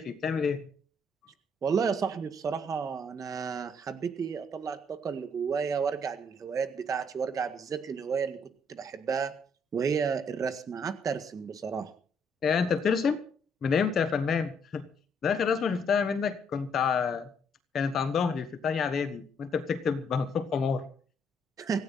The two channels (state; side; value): normal; both; correlation 0.70